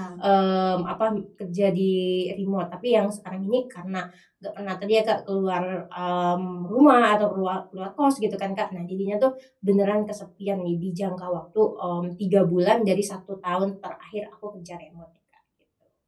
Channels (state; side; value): identical; both; correlation 1.00